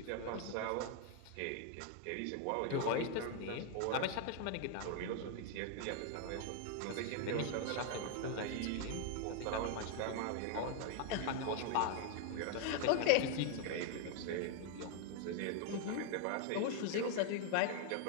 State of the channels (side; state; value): both; different; correlation 0.00